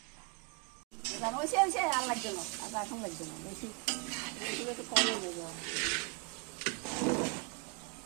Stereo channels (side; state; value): left; quieter; 30.8 dB